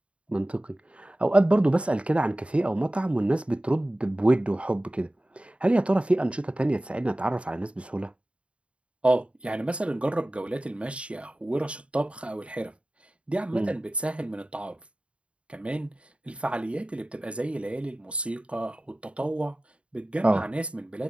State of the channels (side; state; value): left; late; 0.060 ms